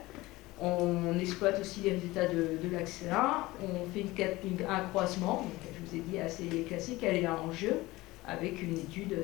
On exploite aussi les résultats de l'axe 1, on fait un croisement, donc, je vous ai dit assez classique, elle est là en jeu, avec une étude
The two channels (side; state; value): right; quieter; 19.7 dB